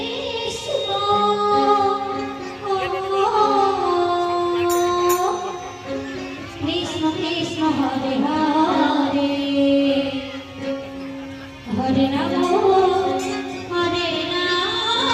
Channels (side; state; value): both; identical; correlation 1.00